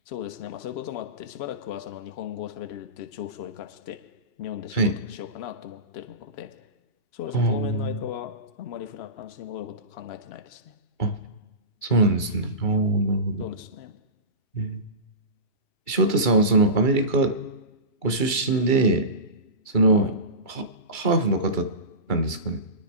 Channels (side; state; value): right; late; 2.3 ms